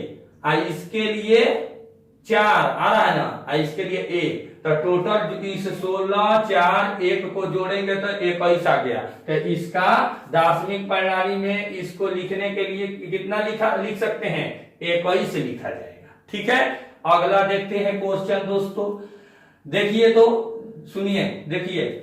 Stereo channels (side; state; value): both; identical; correlation 1.00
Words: इसके लिए 4 आ रहा है ना, इसके लिए 1, तो टोटल इस 16 4 1 को जोड़ेंगे तो 21 आ गया। तो इसका दार्शनिक प्रणाली में इसको लिखने के लिए कितना लिख सकते हैं 21 लिखा जाएगा। ठीक है, अगला देखते हैं क्वेश्चन दोस्तों। देखिए तो सुनिए, देखिए